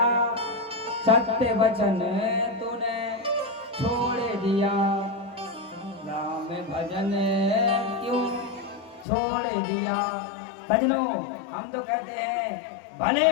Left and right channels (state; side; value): drops out; right; at 9.1 s